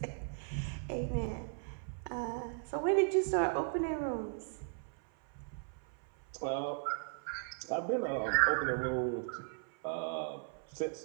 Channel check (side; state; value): left; silent; 53 dB below the other